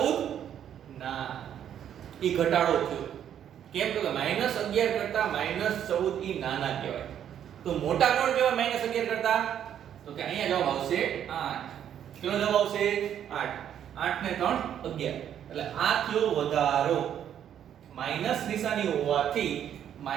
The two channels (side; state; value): left; quieter; 9.7 dB